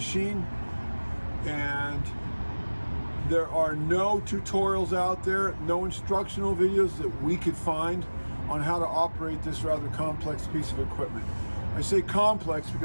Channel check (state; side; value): inverted; both; correlation -1.00